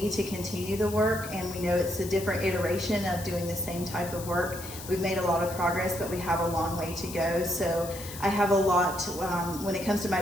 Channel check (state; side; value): noise; left; hiss, 12 dB below the sound